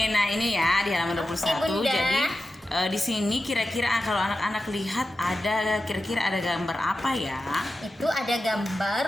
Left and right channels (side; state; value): both; normal; correlation 0.92